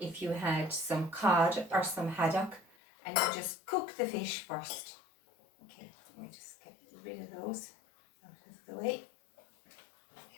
you had some cod or some haddock, and you just cook the fish first. Okay, let me just get rid of those out of the way.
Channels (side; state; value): right; drops out; at 2.7 s